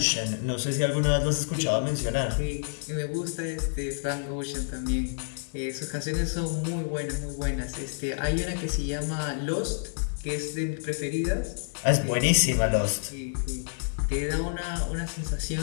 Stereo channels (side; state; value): right; silent; 58 dB below the other